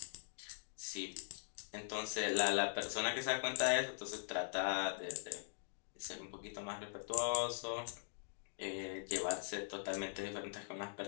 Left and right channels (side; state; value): right; silent; digital silence